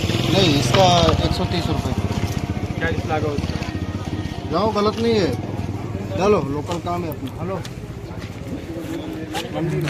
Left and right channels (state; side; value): identical; both; correlation 1.00